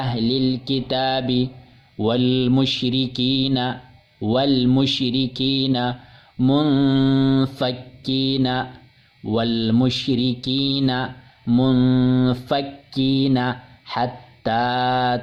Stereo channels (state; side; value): identical; both; correlation 1.00